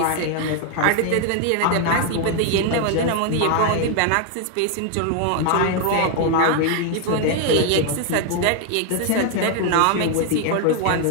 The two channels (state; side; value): different; both; correlation 0.00